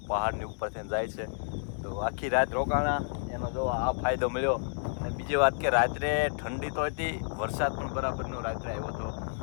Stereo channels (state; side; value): silent; right; 58 dB below the other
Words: પહાડની ઉપરથી જાય છે. તો આખી રાત રોકાણા એનો જો આ ફાયદો મળ્યો. અને બીજી વાત કે રાત્રે ઠંડી તો હતી, વરસાદ પણ બરાબરનો રાત્રે આવ્યો હતો